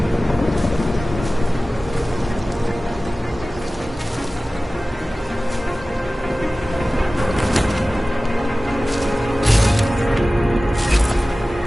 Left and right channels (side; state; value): both; normal; correlation 0.97